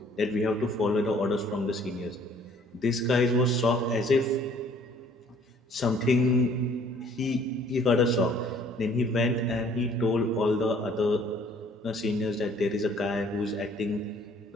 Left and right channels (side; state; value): both; normal; correlation 0.57